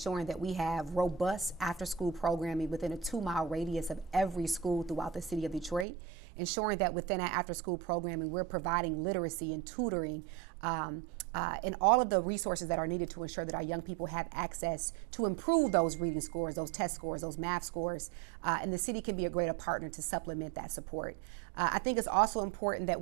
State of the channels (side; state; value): left; drops out; at 5.9 s